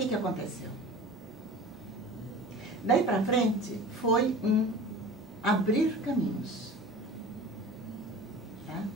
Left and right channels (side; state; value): both; normal; correlation 0.38